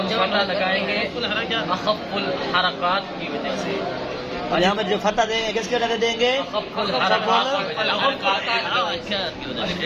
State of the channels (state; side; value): identical; both; correlation 1.00